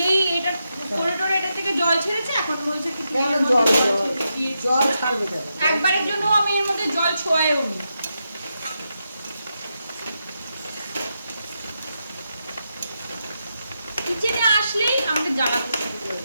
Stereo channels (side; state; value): both; inverted; correlation -0.85